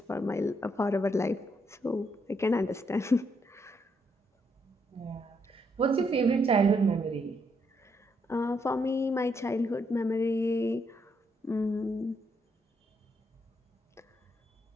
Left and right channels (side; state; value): both; normal; correlation 0.76